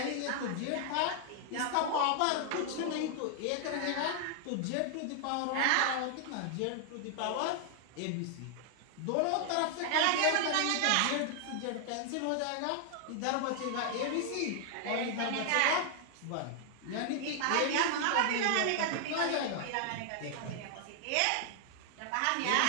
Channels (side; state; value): both; different; correlation 0.00